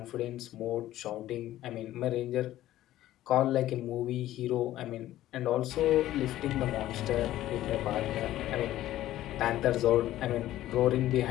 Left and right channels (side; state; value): right; quieter; 14.1 dB